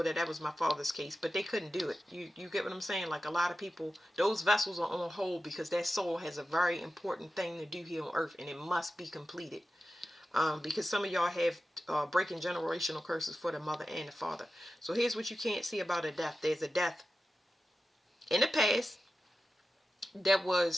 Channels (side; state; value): both; normal; correlation 0.93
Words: that was my father's case. But they couldn't do it. You get what I'm saying? Like, a lot of people, those vessels are on hold because that soul has a very important thing to do here on earth, and it must be completed. Because some of y'all have breaking generational curses for the mother and the father. So here's what you can't see about a death. There's a death in the past that